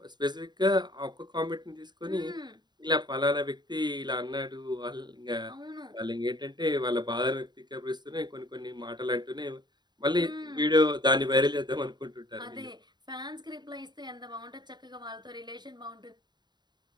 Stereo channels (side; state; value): left; late; 0.21 ms